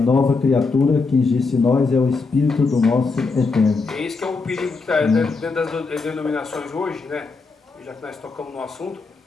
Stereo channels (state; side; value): quieter; right; 4.2 dB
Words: criatura que existe em nós é o Espírito do nosso Eterno. É esse que é o perigo que está dentro das denominações hoje, né? Já que nós tocamos no assunto.